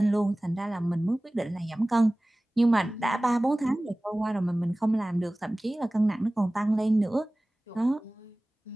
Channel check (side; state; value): both; normal; correlation 0.98